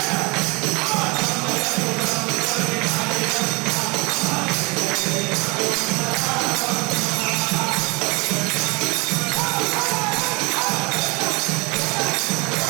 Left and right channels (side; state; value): left; quieter; 27.4 dB